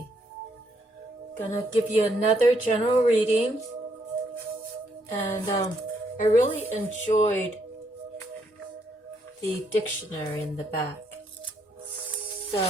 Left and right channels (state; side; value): normal; both; correlation 0.74